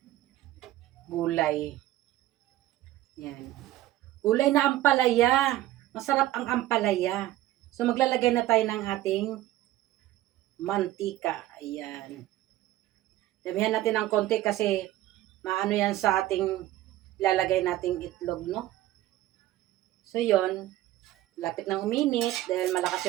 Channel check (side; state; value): left; quieter; 15.0 dB